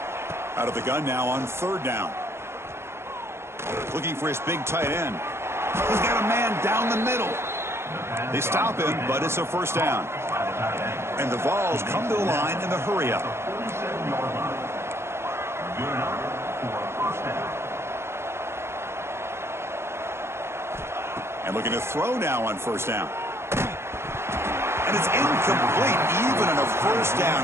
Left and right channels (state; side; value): late; left; 0.12 ms